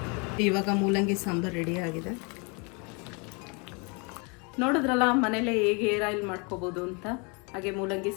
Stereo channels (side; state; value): right; quieter; 32.2 dB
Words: ಇವಾಗ ಮೂಲಂಗಿ ಸಾಂಬಾರು ರೆಡಿ ಆಗಿದೆ. ನೋಡಿದ್ರಲ್ಲ ಮನೇಲೆ ಹೇಗೆ ಹೇರ್ ಆಯಿಲ್ ಮಾಡ್ಕೋಬೋದು ಅಂತ. ಹಾಗೆ ಮೂಲಂಗಿ